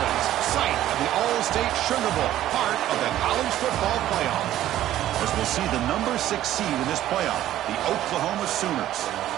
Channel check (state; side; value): quieter; left; 13.1 dB